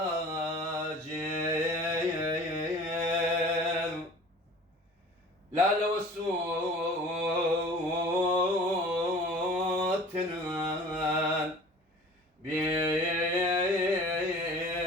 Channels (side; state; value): both; normal; correlation 0.45